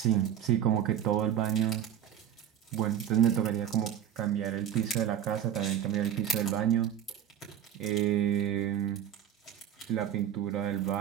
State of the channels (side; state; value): left; quieter; 9.8 dB